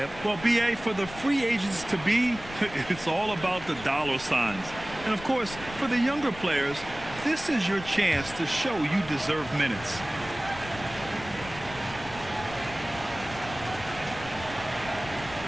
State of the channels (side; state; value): left; noise; rumble, 15 dB below the sound